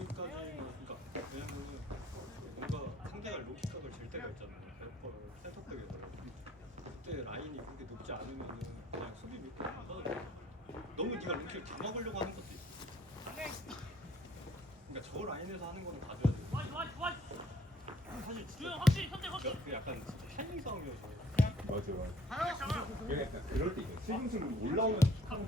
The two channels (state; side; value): normal; both; correlation 0.59